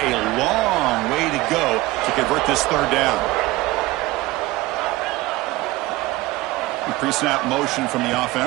long way to go to convert this 3rd down. Pre-snap motion from the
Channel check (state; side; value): quieter; left; 18.8 dB